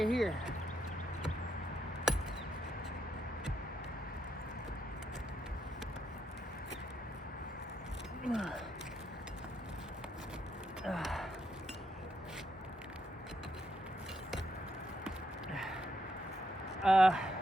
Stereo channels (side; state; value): both; normal; correlation 0.79